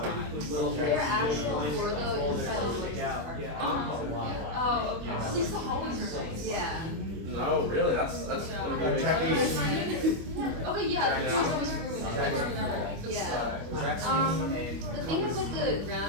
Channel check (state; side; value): late; left; 25 ms